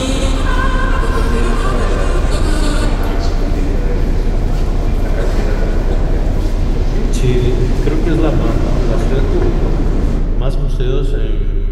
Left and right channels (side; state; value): both; identical; correlation 1.00